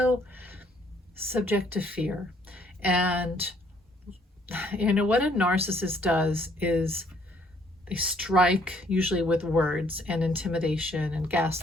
subject to fear. And you know what a narcissist does is they strike usually with words and intimidation and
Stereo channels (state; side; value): normal; both; correlation 0.65